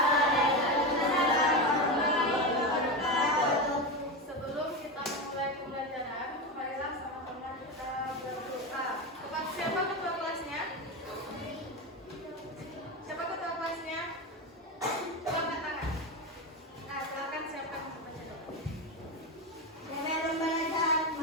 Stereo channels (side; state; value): both; normal; correlation 0.17